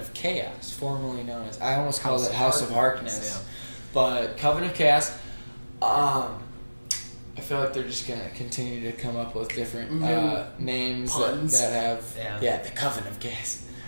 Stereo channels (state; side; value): inverted; both; correlation -1.00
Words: Chaos, formerly known as, I almost called it House of Harkness, yeah. But Coven of Chaos. I feel like they're just going to continue to come up with different names that have... Yeah, the Coven of Chaos.